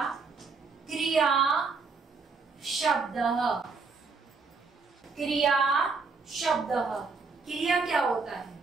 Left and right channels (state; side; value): quieter; left; 4.6 dB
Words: क्रिया शब्द। क्रिया शब्द, क्रिया क्या होता है?